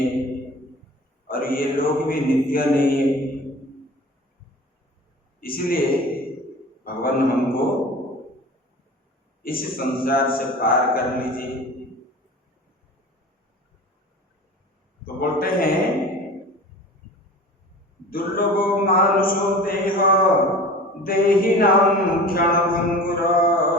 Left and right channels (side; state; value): both; normal; correlation 0.38